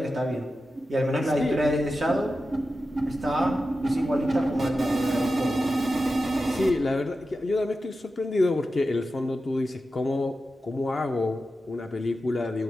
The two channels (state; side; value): normal; both; correlation 0.92